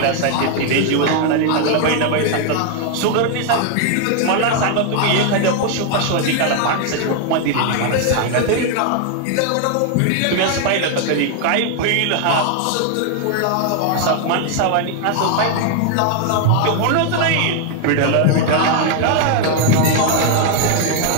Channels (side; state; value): both; different; correlation 0.00